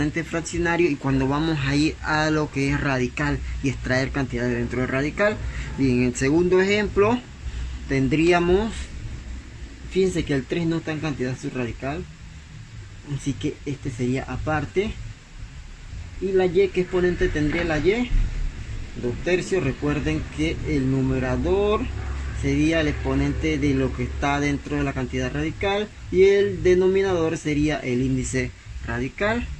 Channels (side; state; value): both; identical; correlation 1.00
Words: fraccionario y cuando vamos a ir a lo que es radical y extraer cantidades dentro del radical. Bien, en el segundo ejemplo tendríamos, fíjense que el 3 no está en cantidad subradical, así que este sería aparte. Y la y, ¿qué exponente tendría la y? 2/3. Recuerden que el numerador sería el exponente de lo que está dentro de la cantidad radical y el denominador sería el índice radical.